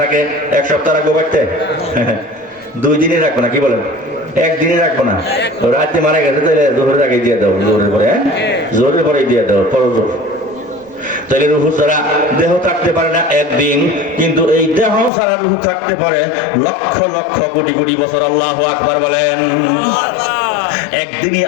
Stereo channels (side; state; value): right; drops out; at 15.1 s